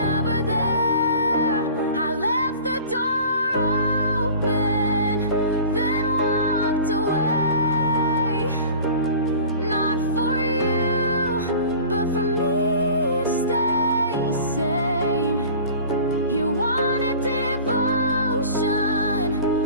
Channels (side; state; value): both; inverted; correlation -0.41